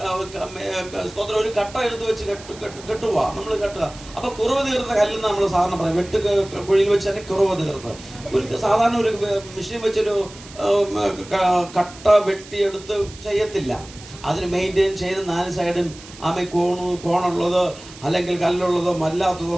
സ്തോത്രം ഒരു കട്ട എടുത്ത് വെച്ച് കെട്ടുക, നമ്മൾ കെട്ടുക. അപ്പൊ കുറവ് തീർത്ത കല്ലെന്ന് നമ്മൾ സാധാരണ പറയും, വെട്ട് കുഴിയിൽ വെച്ച് തന്നെ കുറവ് തീർത്ത്. ഒരു സാധാരണ ഒരു മെഷീൻ വെച്ചൊരു കട്ട വെട്ടിയെടുത്ത് ചെയ്യത്തില്ല. അതിന് മെയിൻറ്റെയിൻ ചെയ്ത് 4 സൈഡും കോണുള്ളത് അല്ലെങ്കിൽ കല്ലുള്ളതോ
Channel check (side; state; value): right; noise; hiss, 18 dB below the sound